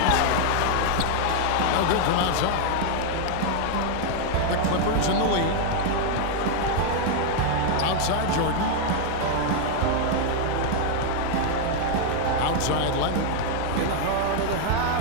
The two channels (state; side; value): different; both; correlation 0.00